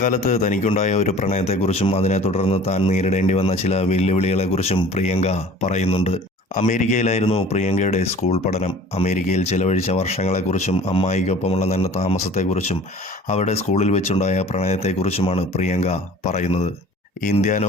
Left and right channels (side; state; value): both; normal; correlation 0.46